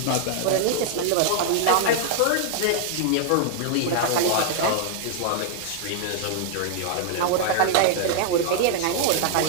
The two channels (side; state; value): both; different; correlation -0.01